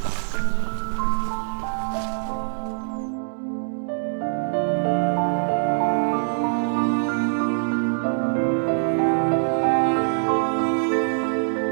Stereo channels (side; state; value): left; silent; digital silence